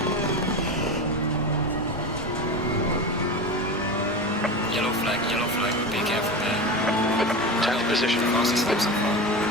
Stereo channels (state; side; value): normal; both; correlation 0.25